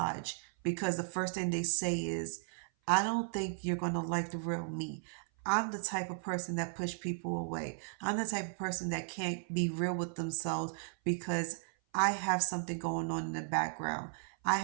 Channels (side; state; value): left; silent; 54 dB below the other